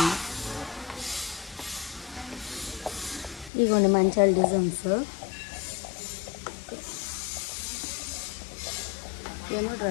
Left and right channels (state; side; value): drops out; right; at 3.5 s